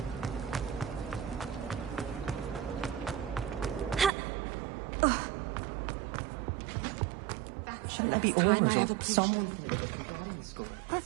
That's the last time I ever... Someone from the Ministry guarding the school.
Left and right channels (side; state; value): left; drops out; at 4.1 s